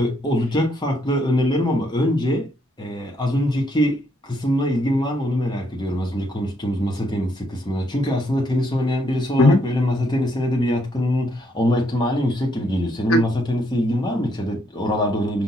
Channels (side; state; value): both; normal; correlation 0.73